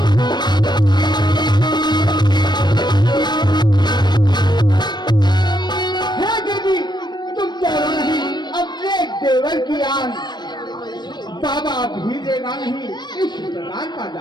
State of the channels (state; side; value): late; right; 0.21 ms